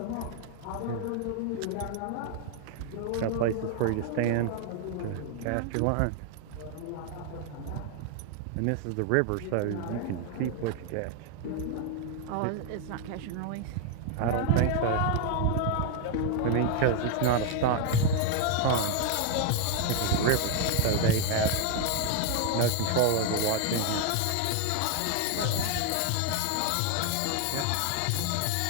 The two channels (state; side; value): different; both; correlation 0.00